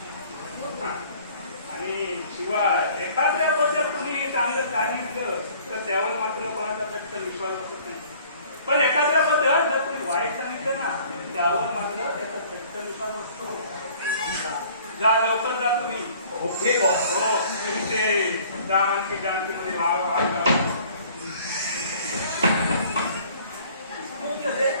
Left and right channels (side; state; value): both; inverted; correlation -0.53